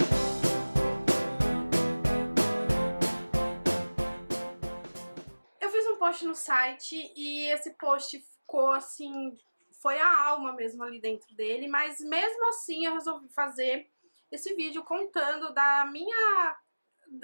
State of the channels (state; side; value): inverted; both; correlation -1.00